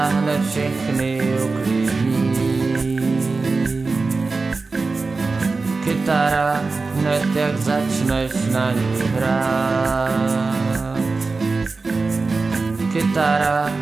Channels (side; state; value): left; quieter; 4.0 dB